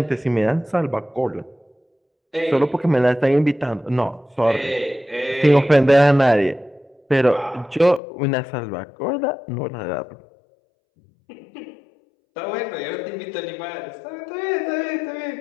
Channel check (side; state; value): right; drops out; at 8.0 s